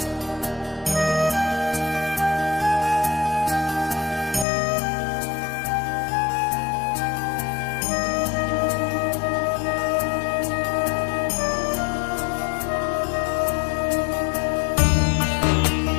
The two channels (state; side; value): drops out; right; at 4.5 s